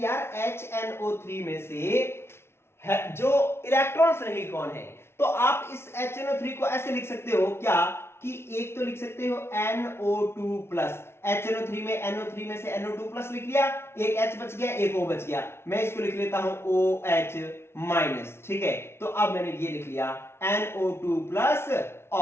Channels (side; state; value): right; late; 0.12 ms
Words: यार HNO3 में से जो इलेक्ट्रॉन्स नहीं कौन है, तो आप इस HNO3 को ऐसे लिख सकते हो क्या कि एक तो लिख सकते हो NO2 प्लस, HNO3 में NO3 में से NO2 प्लस लिख लिया, एक H बच गया, एक O बच गया, मैं इसको लिख लेता हूं OH माइनस, ठीक है। तो अब मैंने ये लिख लिया NO2 प्लस